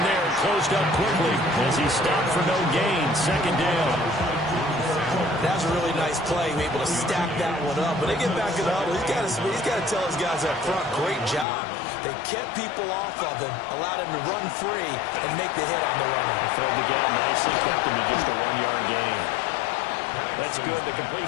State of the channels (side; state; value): right; drops out; at 11.5 s